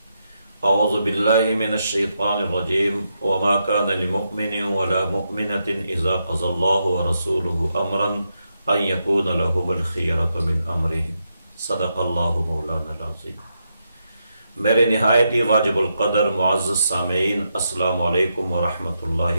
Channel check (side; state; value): both; inverted; correlation -0.83